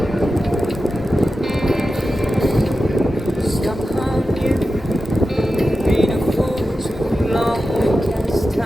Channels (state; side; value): normal; both; correlation 0.92